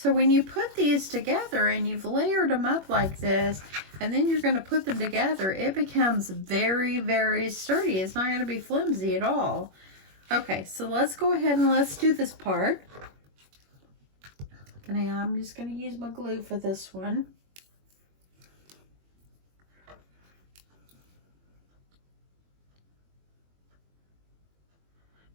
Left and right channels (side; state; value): left; late; 21 ms